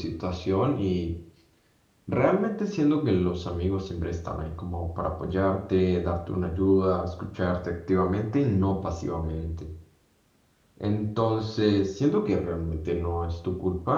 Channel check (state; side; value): identical; both; correlation 1.00